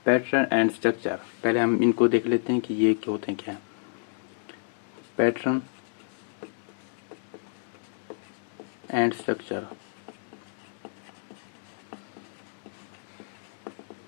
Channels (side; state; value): right; silent; digital silence